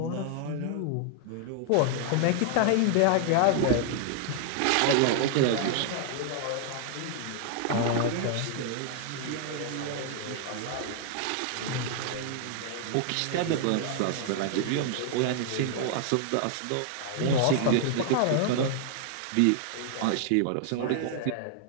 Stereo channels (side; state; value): both; different; correlation 0.00